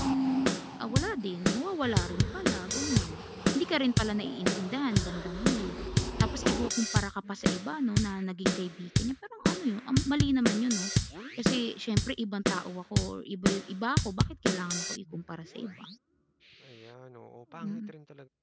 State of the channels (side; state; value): both; identical; correlation 1.00